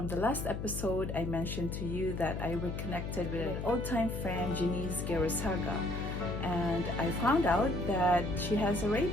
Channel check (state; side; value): noise; left; hum, 5 dB below the sound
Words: the last episode, I mentioned to you that I reconnected with an old-time friend, Jeanice, and I found out that she has a